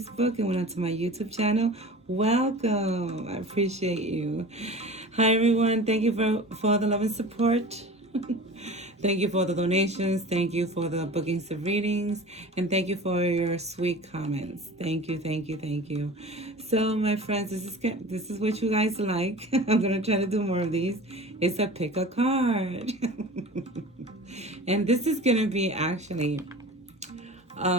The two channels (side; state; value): both; normal; correlation 0.37